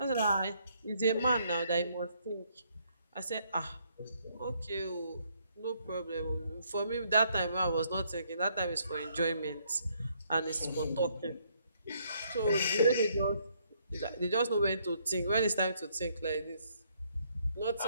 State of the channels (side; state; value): both; inverted; correlation -0.70